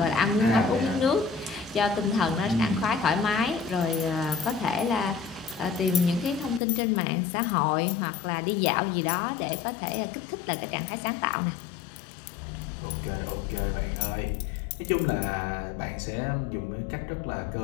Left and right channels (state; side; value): drops out; right; at 6.6 s